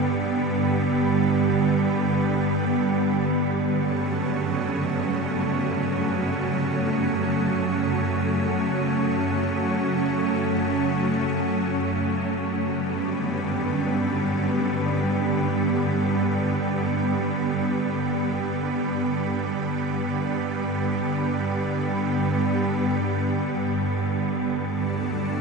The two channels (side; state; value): both; normal; correlation 0.38